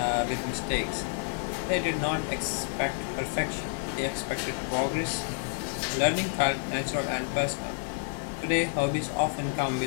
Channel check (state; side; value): silent; right; 58 dB below the other